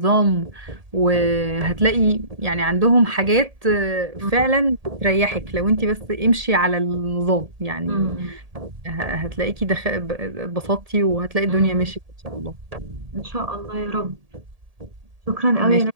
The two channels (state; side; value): late; left; 1.7 ms